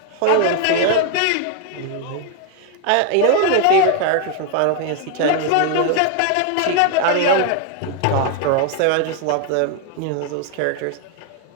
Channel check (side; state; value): both; different; correlation 0.00